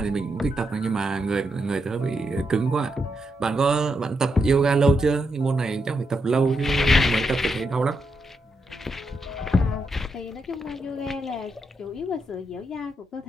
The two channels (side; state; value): both; normal; correlation 0.83